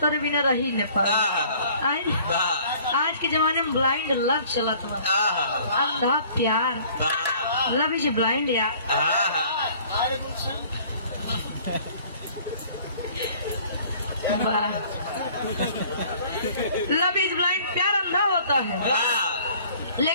बिना रही न पाए। आज के जमाने में ब्लाइंड लव चलत बा, अंधा प्यार। लव इज ब्लाइंड यार। लव इज ब्लाइंड, प्यार अंधा होता है।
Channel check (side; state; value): both; inverted; correlation -0.53